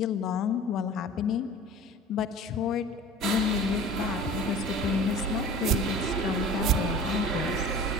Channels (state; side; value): normal; both; correlation 0.40